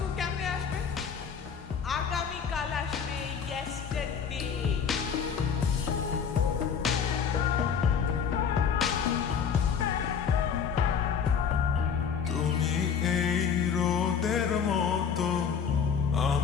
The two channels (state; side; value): quieter; right; 7.0 dB